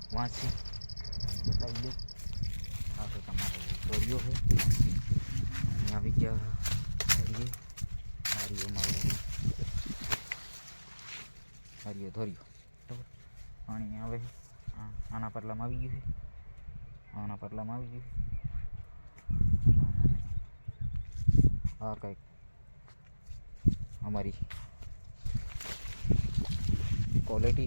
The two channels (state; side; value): inverted; both; correlation -1.00